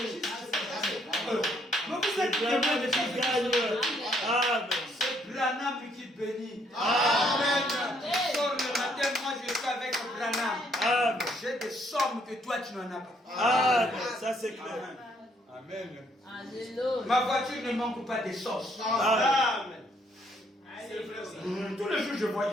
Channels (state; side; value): normal; both; correlation 0.68